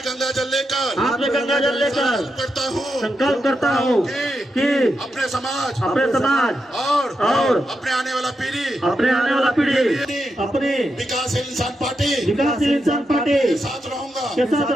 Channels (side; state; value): both; normal; correlation 0.86